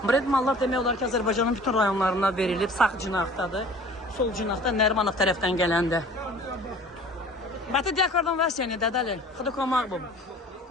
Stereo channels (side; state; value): both; normal; correlation 0.46